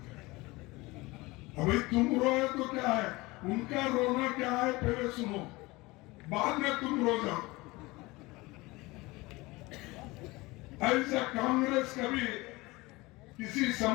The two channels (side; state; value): right; quieter; 22.1 dB